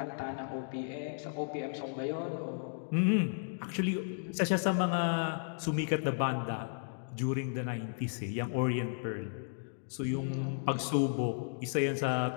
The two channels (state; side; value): silent; right; digital silence